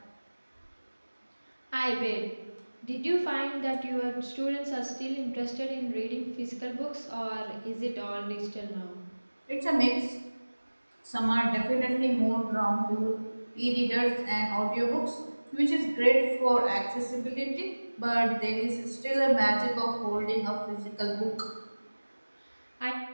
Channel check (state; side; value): inverted; both; correlation -1.00